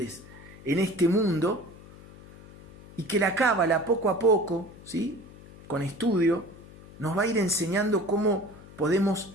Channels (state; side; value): noise; left; hum, 20 dB below the sound